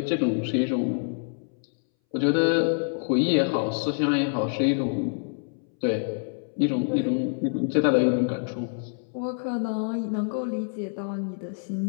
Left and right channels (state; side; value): silent; right; 61 dB below the other